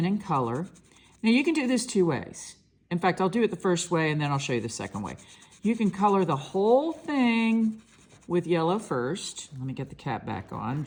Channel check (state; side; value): identical; both; correlation 1.00